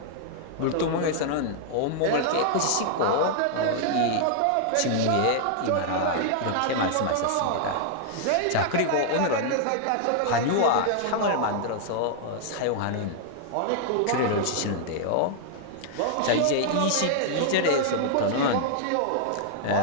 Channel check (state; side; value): different; both; correlation -0.01